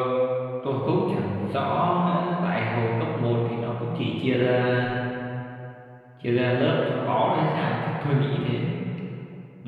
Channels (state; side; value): identical; both; correlation 1.00